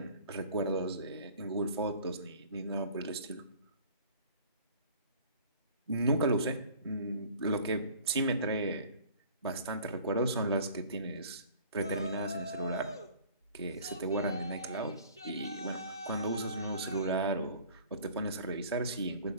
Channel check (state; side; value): inverted; both; correlation -0.49